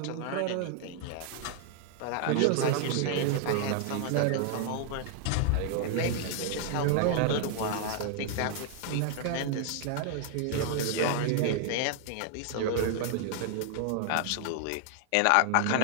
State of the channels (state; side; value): different; both; correlation 0.00